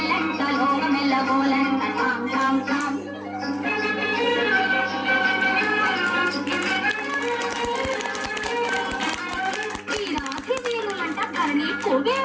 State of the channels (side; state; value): both; identical; correlation 1.00